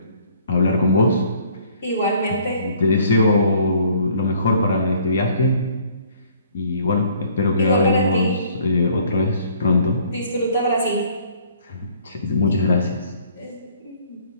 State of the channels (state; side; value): inverted; both; correlation -0.58